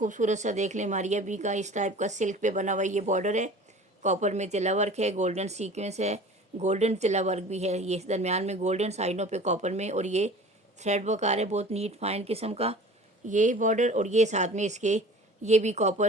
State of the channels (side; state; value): both; normal; correlation 0.42